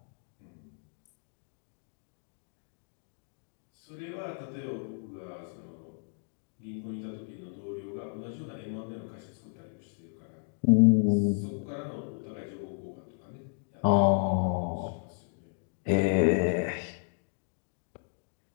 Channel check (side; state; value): right; silent; 56 dB below the other